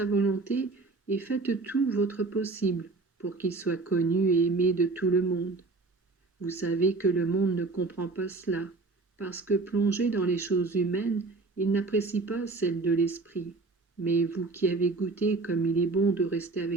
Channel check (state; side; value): quieter; left; 3.7 dB